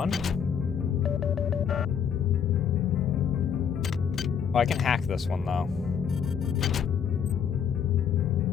Oh, I can hack this one, though.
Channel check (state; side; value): quieter; right; 7.6 dB